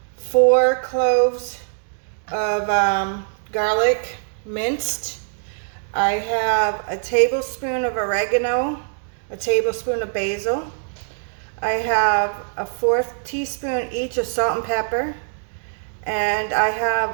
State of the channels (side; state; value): left; silent; digital silence